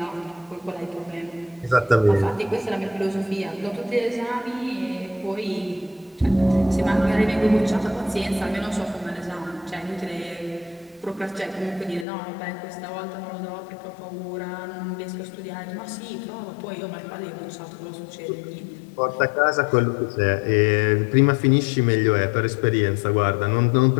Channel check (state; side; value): drops out; right; at 12.1 s